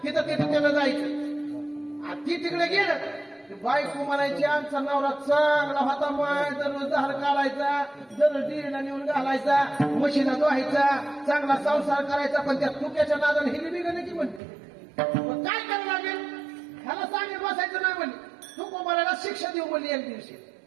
तिथं तिथं त्याला जायचं. आणि ती तिकडे गेलं बायको म्हणायची आमचा नवरा चांगला होता. माय दररोज धार काढायचा. दररोज डिरीला नेऊन घालायचा. म्हशीला धुवायचा. चांगला संसार करायचा. पण त्या तुक्याच्या नादाने हिली बिघडली की म्हणते काय करावं लागेल. ह्याला सांगेल बसायचं नाही म्हणली. तुकोबाराला शिक्षा देऊ म्हणली एक दिवशी.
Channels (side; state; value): left; drops out; at 14.4 s